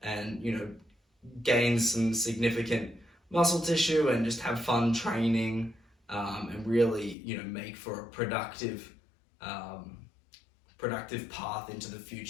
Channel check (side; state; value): right; drops out; at 7.2 s